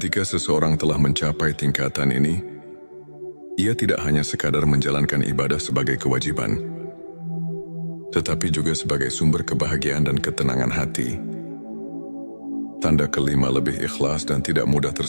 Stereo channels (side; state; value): both; inverted; correlation -1.00